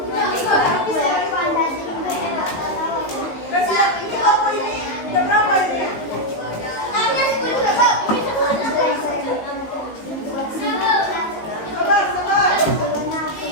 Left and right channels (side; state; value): right; late; 19 ms